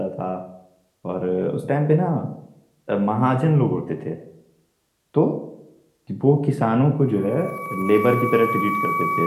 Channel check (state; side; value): identical; both; correlation 1.00